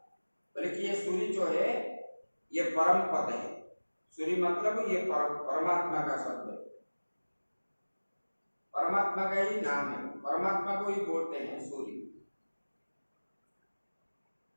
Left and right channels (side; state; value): both; inverted; correlation -1.00